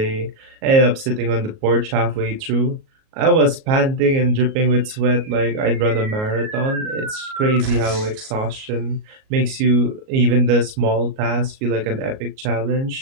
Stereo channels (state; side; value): late; left; 37 ms